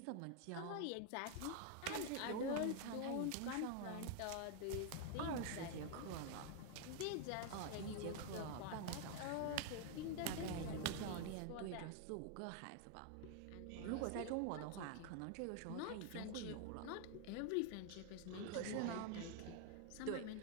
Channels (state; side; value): different; both; correlation 0.01